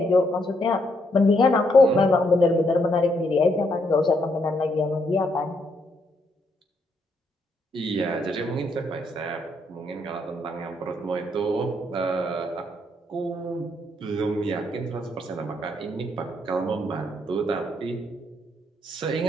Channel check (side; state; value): both; normal; correlation 0.74